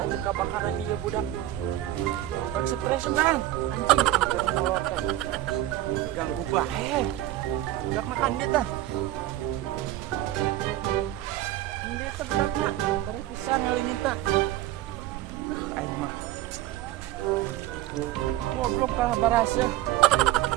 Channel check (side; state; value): left; quieter; 14.6 dB